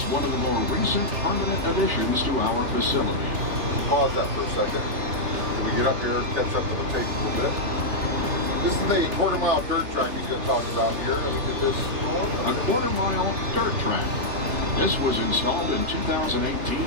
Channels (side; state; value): left; late; 3.3 ms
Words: one of the more recent permanent additions to our facility. Pause that for a second. Can we get up here and catch up to the tape a little bit? This is the quarter-mile dirt track he's going to talk about here. Let me get this going. A quarter-mile dirt track. This was installed in 2018